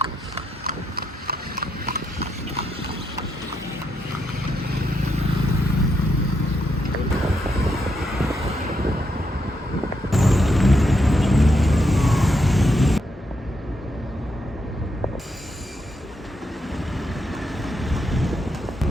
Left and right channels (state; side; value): normal; both; correlation 0.80